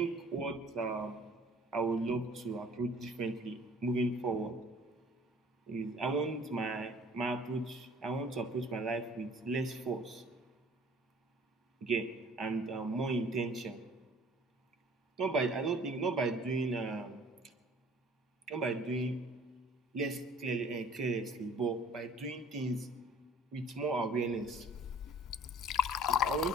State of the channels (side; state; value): both; normal; correlation 0.52